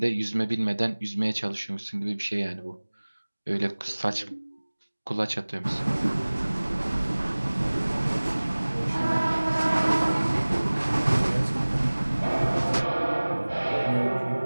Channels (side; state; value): both; inverted; correlation -1.00